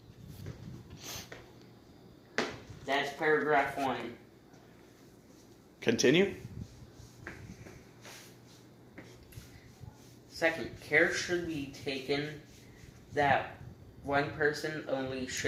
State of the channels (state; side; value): identical; both; correlation 1.00